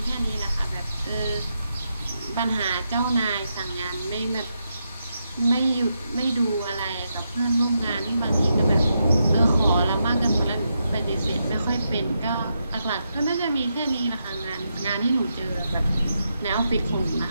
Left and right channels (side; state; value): both; inverted; correlation -0.83